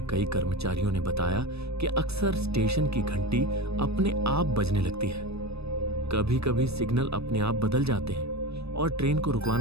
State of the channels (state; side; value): late; left; 0.79 ms